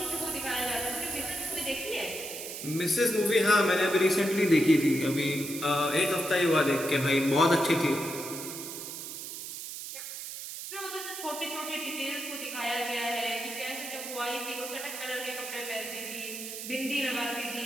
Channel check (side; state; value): right; noise; hiss, 8 dB below the sound